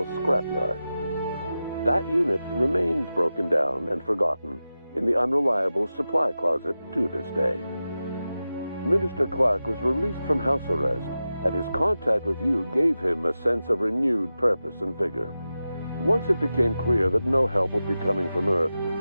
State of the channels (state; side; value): inverted; both; correlation -0.93